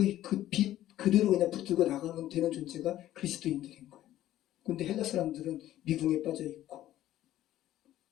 빛 그대로 그냥 붙들고 나가면 되는 존재가 그리스도인들인 거예요. 근데 헬라 사람들은 미궁에 빠져 있고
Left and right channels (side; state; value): right; quieter; 13.5 dB